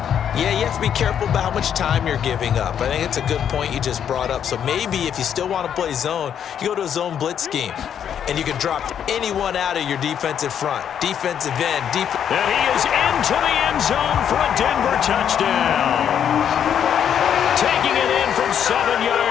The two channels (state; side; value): quieter; right; 8.8 dB